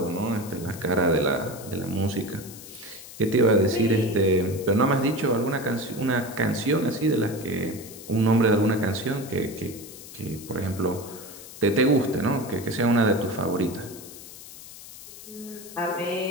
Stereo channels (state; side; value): noise; left; hiss, 15 dB below the sound